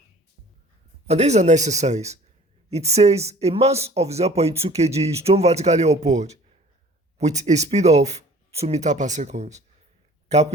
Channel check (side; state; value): both; normal; correlation 0.49